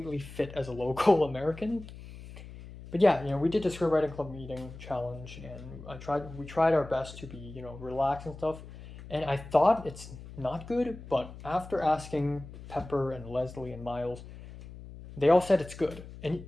fit as a local American. But yeah, we did the scriptwriting club meeting challenge, and we tried our best to be, relaxed and stuff. And I thought it's not good, but after asking Pepper and Leslie and Miles, they all said it's good. And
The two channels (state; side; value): noise; left; hum, 15 dB below the sound